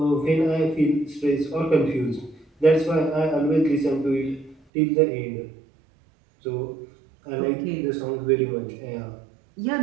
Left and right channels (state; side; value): drops out; left; at 4.5 s